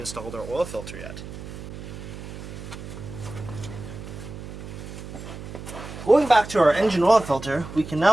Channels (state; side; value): noise; right; hum, 11 dB below the sound